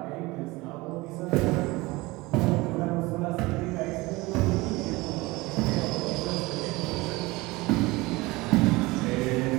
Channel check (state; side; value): quieter; left; 21.9 dB